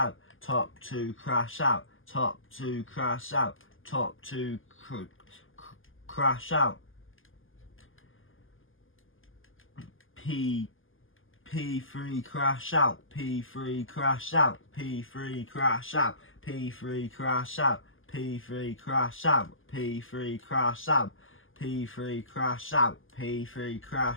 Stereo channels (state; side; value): late; right; 0.58 ms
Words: top 2 crash out, top 2 crash out, top 2 crash out. P3 crash out, P3 crash out, P3 crash out, P3 crash out, P3 crash out, P3 crash out, P3 crash out, P3